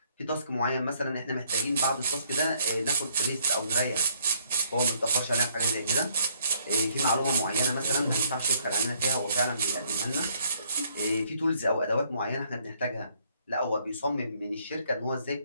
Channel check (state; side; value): inverted; both; correlation -0.66